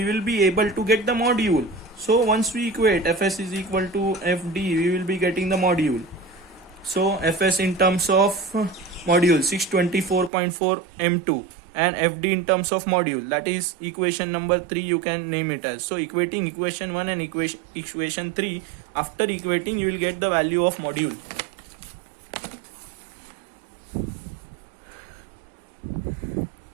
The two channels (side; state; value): left; drops out; at 10.3 s